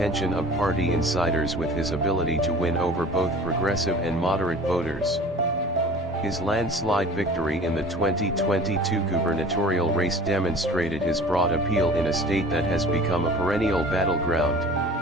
of party insiders with his ability to win over both progressive and moderate voters. His landslide victory in the 2022 gubernatorial race demonstrated his broad appeal in a state that has become a perennial battleground.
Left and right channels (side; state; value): both; normal; correlation 0.44